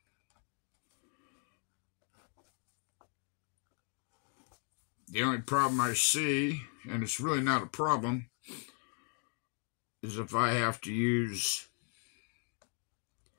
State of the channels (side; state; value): right; quieter; 39.3 dB